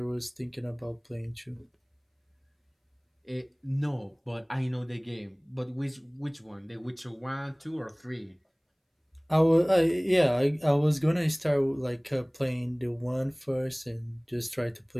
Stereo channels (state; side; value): identical; both; correlation 1.00